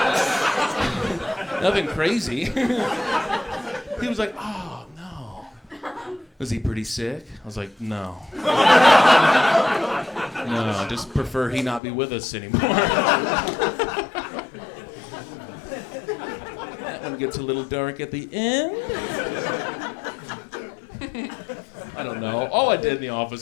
Nothing crazy." He was like, "Oh, no. Was he pretty sick?" I was like, "No. No, I just prefer he not be with us anymore." That one gets a little dark at the end. I don't know. All I did in the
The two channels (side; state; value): right; drops out; at 11.8 s